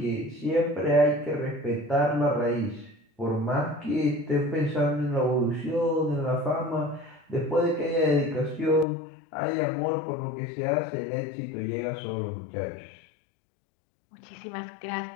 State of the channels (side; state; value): right; drops out; at 8.8 s